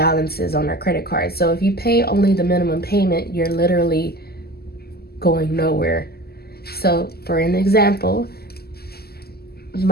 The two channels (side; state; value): right; late; 0.46 ms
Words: on our credit card. So if you pay only the minimum payment, you're literally going nowhere. So for an example,